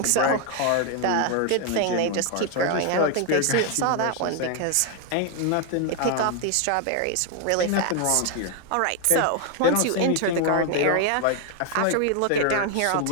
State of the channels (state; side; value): different; both; correlation 0.01